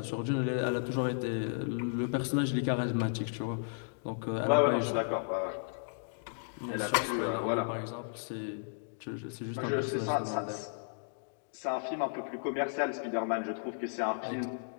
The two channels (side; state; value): right; silent; digital silence